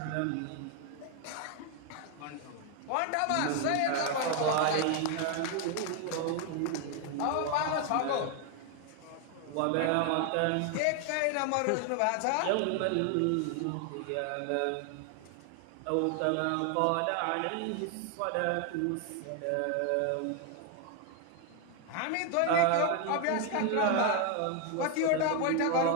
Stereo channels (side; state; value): both; different; correlation 0.00